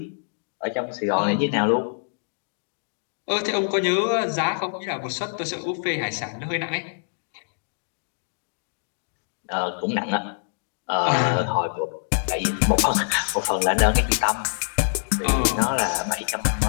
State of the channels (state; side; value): silent; right; digital silence